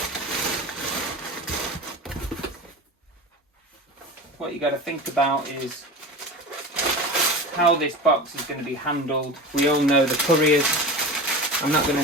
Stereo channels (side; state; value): both; normal; correlation 0.31